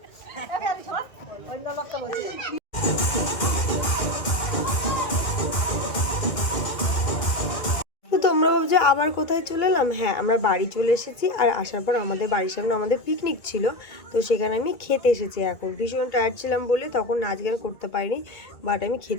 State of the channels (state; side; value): late; right; 2.1 ms